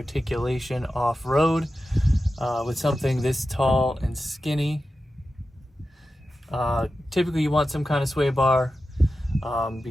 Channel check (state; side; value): normal; both; correlation 0.92